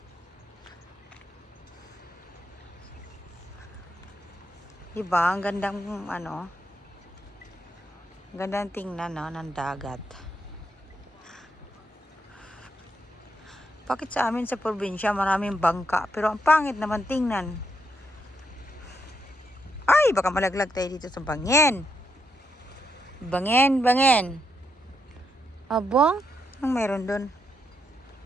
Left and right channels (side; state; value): both; normal; correlation 0.80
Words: Diba? Ang gandang ano, gandang tingnan, no, ng dagat. Bakit sa amin sa probinsya maraming bangka, pero ang pangit naman tingnan. Ay, baka malaglag tayo dito sa bangin. Bangin. Abang, anong meron dun?